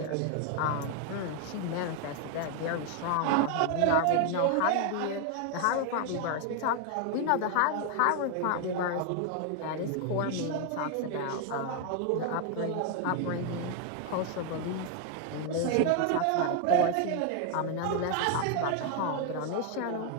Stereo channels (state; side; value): different; both; correlation 0.00